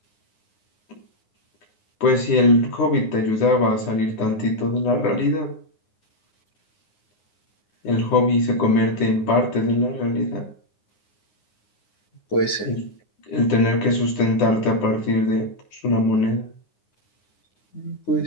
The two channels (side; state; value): right; late; 9.5 ms